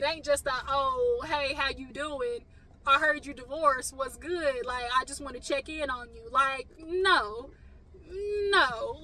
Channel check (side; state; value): both; identical; correlation 1.00